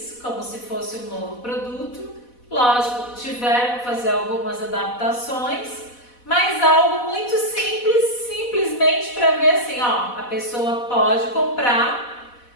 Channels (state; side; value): late; right; 4.1 ms